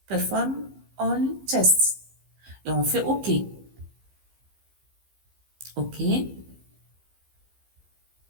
Perform all tests. Et on fait OK. OK.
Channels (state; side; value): late; left; 15 ms